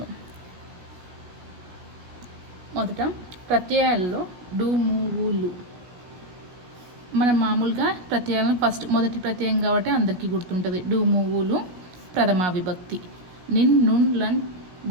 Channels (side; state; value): left; late; 16 ms